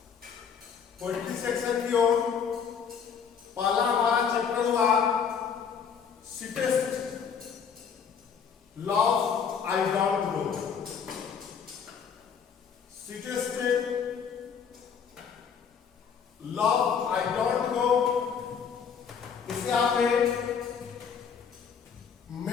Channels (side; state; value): right; quieter; 6.9 dB